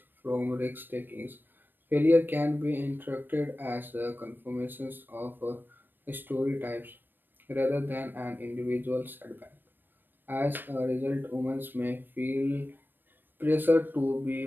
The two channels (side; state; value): left; late; 0.093 ms